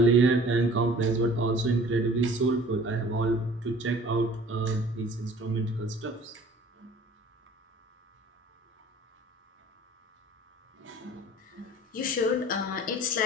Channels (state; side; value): normal; both; correlation 0.49